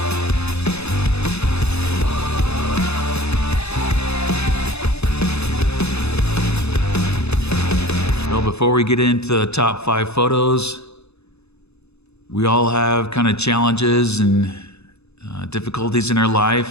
Before we get into the top 5 photos, we all have kind of challenges and difficulties in our life,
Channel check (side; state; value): right; late; 0.80 ms